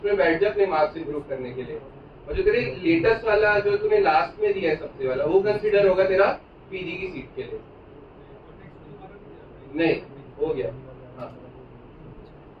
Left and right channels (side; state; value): both; identical; correlation 1.00